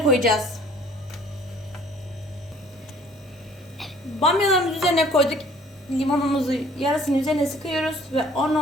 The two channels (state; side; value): normal; both; correlation 0.55